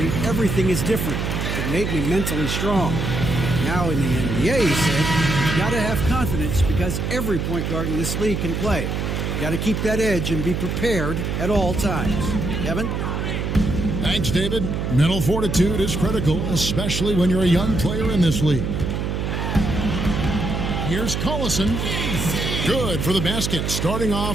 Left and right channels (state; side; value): noise; right; hum, 2 dB below the sound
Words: everything is different. It made me mentally strong. Now in the NBA, he said, you got to have confidence because every point guard in this league can play. You got to keep that edge and be prepared at all times. Kevin? Thanks, David. Mental fortitude is critical, especially when you're a young player in this league. Here's Collison. Good for the basket. Starting